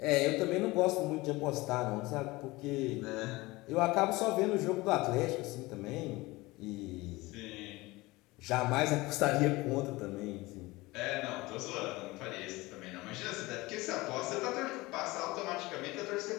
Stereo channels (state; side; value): quieter; right; 21.3 dB